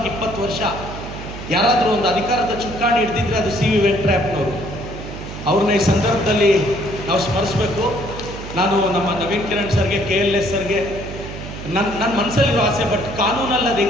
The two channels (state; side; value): noise; right; hum, 10 dB below the sound